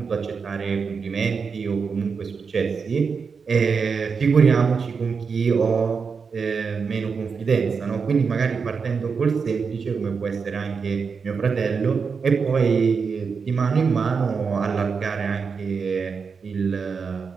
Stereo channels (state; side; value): quieter; left; 5.5 dB